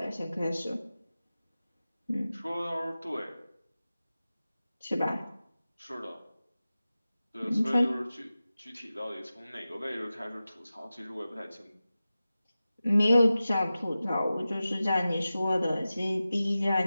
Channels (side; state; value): both; inverted; correlation -0.95